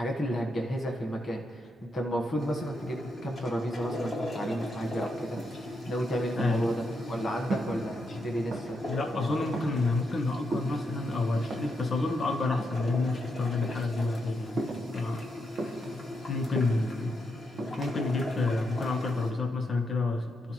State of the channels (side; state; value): both; normal; correlation 0.82